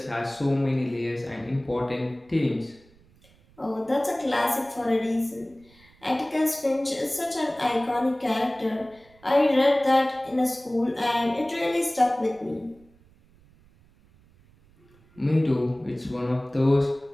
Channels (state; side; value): noise; right; rumble, 29 dB below the sound